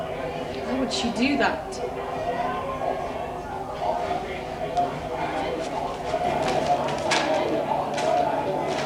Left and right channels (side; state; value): both; identical; correlation 1.00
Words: Why would she do that?